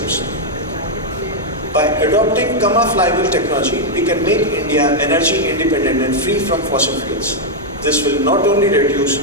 By adopting Gamma flywheel technology, we can make India energy independent and free from fossil fuels. This will not only reduce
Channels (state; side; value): normal; both; correlation -0.02